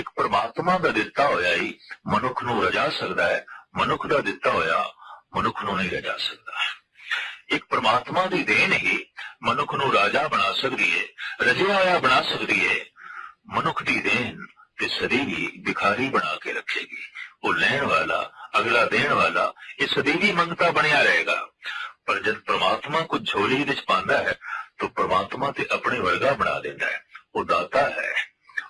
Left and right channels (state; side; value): identical; both; correlation 1.00